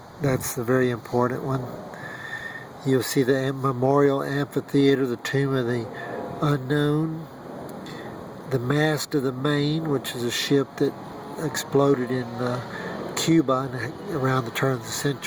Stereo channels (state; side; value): identical; both; correlation 1.00